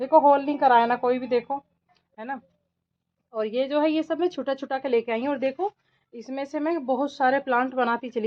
देखो, होल नहीं कराया ना कोई भी, देखो, है ना। और ये जो है, ये सब मैं छुटा छुटा के लेके आई हूँ। और देखो, इसमें से मैं बहुत सारे प्लांट बनाती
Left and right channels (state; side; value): identical; both; correlation 1.00